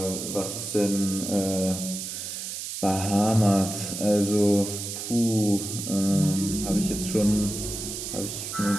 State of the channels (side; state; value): right; noise; hiss, 6 dB below the sound